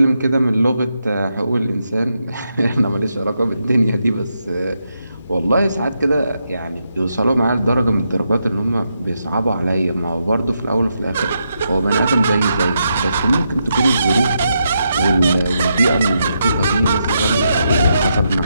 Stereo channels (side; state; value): both; inverted; correlation -0.82